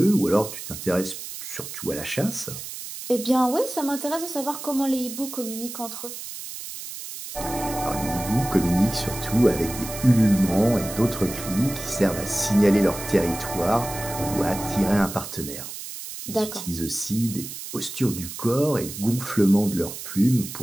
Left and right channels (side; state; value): right; noise; hiss, 10 dB below the sound